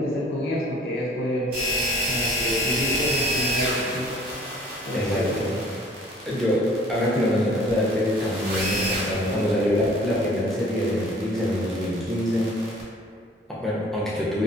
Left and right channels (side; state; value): both; normal; correlation 0.52